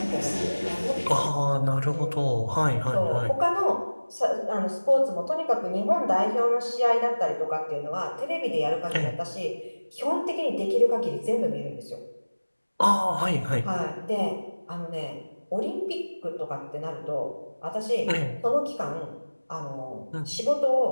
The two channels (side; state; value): both; inverted; correlation -1.00